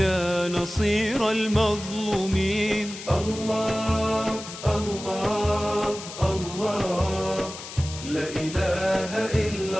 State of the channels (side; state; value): left; noise; hiss, 12 dB below the sound